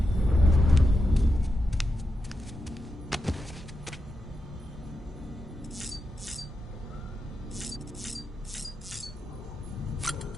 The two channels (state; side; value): normal; both; correlation 0.87